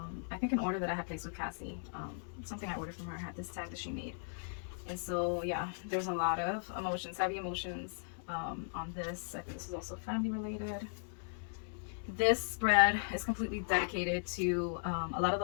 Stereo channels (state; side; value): silent; right; digital silence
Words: I think an order that I had placed with Cassie. Something I ordered from her had this tag that she made. And so, yeah, there's a lot of emotions, heavy emotions on this. I think this is also family related. This spread is completely dedicated to a lot of